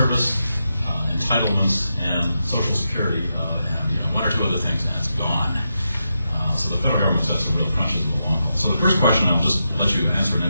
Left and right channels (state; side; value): inverted; both; correlation -0.86